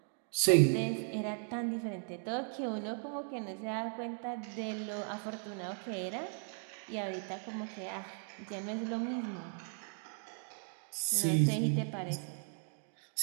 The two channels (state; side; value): silent; left; 53 dB below the other